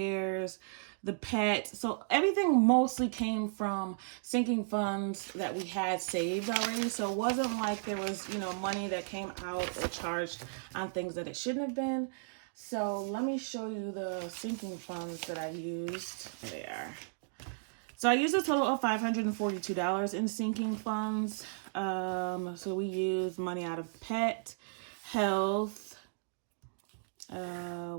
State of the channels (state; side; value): silent; left; digital silence